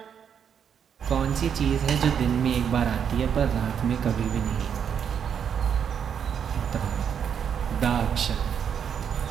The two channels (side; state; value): left; quieter; 7.9 dB